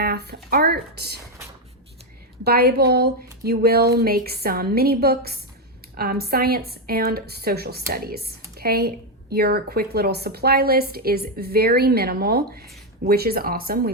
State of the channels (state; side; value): normal; both; correlation 0.05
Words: art, Bible. You will make some mini books, science, and social studies. Okay, your quick little supply list is very minimal, which is awesome.